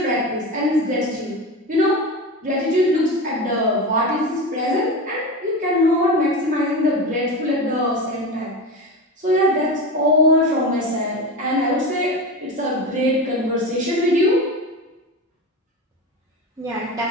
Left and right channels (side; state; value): both; normal; correlation 0.24